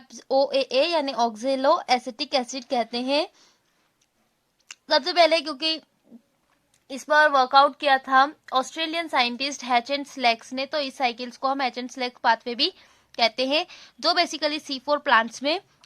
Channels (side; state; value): both; identical; correlation 1.00